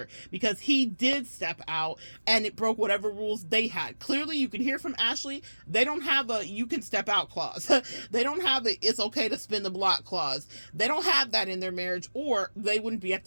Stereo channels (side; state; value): both; inverted; correlation -1.00